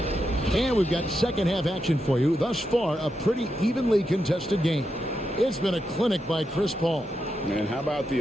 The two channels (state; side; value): normal; both; correlation 0.85